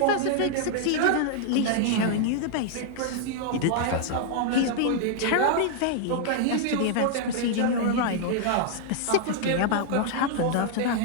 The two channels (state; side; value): different; both; correlation -0.01